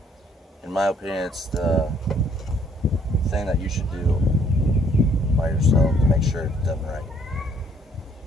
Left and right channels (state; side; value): normal; both; correlation 0.64